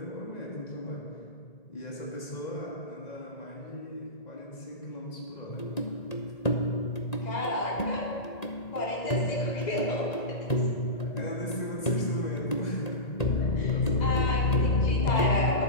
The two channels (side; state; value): right; late; 1.9 ms